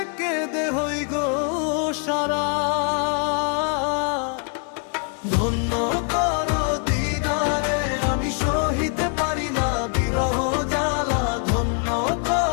কেঁদে হই গো সারা। ধন্য করো দিদারে আমি সহিতে পারি না বিরহ জ্বালা। ধন্য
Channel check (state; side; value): quieter; right; 38.4 dB